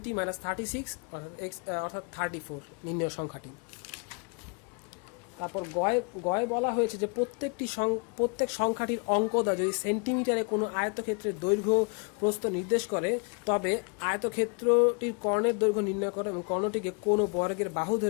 মাইনাস 36, অর্থাৎ 34 নির্ণয় সংখ্যাটি। তারপর গয়ে বলা হয়েছে যে প্রত্যেক সংখ্যাটির অঙ্কটা যদি সেন্টিমিটারে কোনো আয়তক্ষেত্রের দৈর্ঘ্য প্রস্থ নির্দেশ করে, তবে আয়তক্ষেত্রটির কর্ণের দৈর্ঘ্য নির্ণয় করে এবং কর্ণটিকে কোনো বর্গের বাহু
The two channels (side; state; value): right; quieter; 35.9 dB